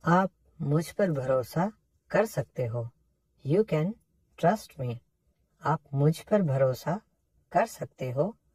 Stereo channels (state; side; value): identical; both; correlation 1.00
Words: आप मुझ पर भरोसा कर सकते हो. You can trust me. आप मुझ पर भरोसा कर सकते हो.